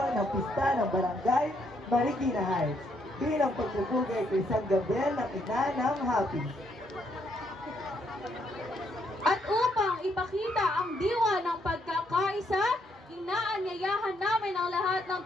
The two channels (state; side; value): normal; both; correlation 0.73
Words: ng pista ng Barangay Marikina Heights bilang pagpupugay kay San Gabriel ng ina ng Happy. At upang ipakita ang diwa ng pagkakaisa, inaanyayahan namin ang lahat ng